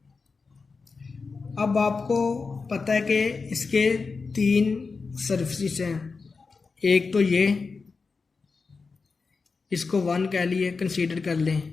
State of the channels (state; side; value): quieter; right; 4.5 dB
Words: अब आपको पता है कि इसके 3 सरफेसेस हैं। एक तो ये, इसको 1 कह लिए, कंसीडर कर लें।